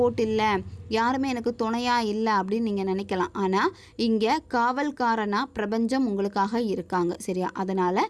இல்லை, யாருமே எனக்கு துணையாக இல்லை அப்படின்னு நீங்கள் நினைக்கலாம். ஆனால் இங்கே காவல்காரனாக பிரபஞ்சம் உங்களுக்காக இருக்காங்க. சரியா, அதனால்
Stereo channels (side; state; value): both; identical; correlation 1.00